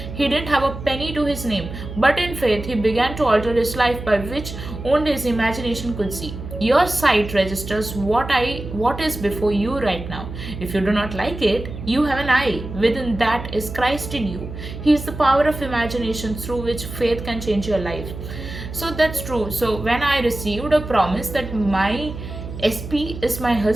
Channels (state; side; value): noise; right; hum, 10 dB below the sound